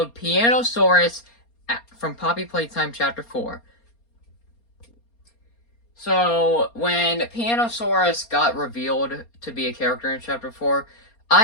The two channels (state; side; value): late; right; 4.3 ms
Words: Pianosaurus from Poppy Playtime Chapter 4. So, when Pianosaurus got revealed to be a character in Chapter 4,